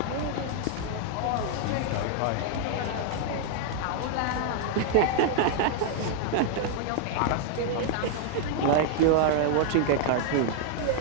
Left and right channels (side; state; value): both; different; correlation 0.00